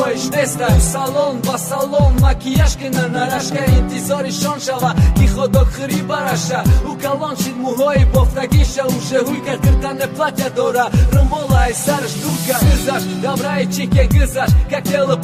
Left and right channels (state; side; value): identical; both; correlation 1.00